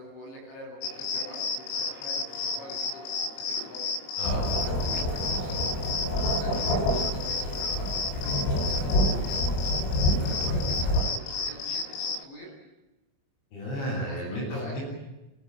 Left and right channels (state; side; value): late; right; 26 ms